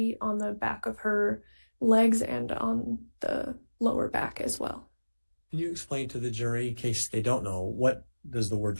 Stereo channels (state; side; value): inverted; both; correlation -1.00